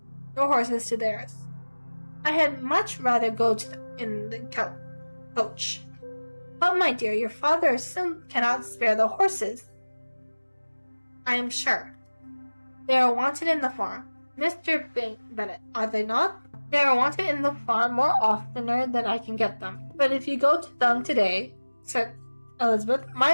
I had much rather go in the coach. But, my dear, your father cannot spare the horses, I am sure. They are wanted in the farm. Mr. Bennet, are they not? They are wanted in the farm more oftener than I can get them. But if you go to them today, said Elizabeth,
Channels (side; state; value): both; inverted; correlation -1.00